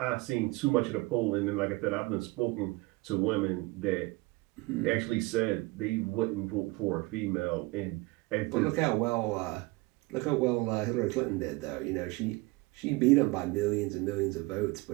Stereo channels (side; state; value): left; quieter; 23.2 dB